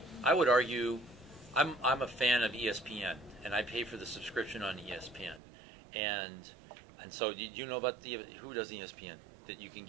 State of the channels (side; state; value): left; drops out; at 5.4 s